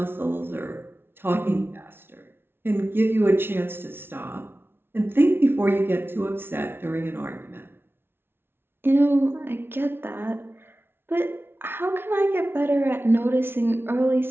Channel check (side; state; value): left; late; 0.11 ms